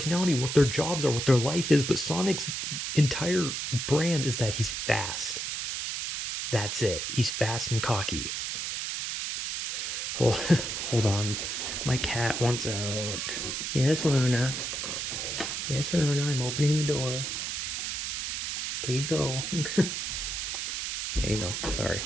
what their jobs are, what their life is. But Sonic's entire brand is that he's fast. That's it. He's fast and cocky. Hold, hold on. My cat wants out. Yes, Luna. Yes, Alona, I'm opening the door. Please go. There you go. Sorry,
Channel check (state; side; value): noise; right; hiss, 3 dB below the sound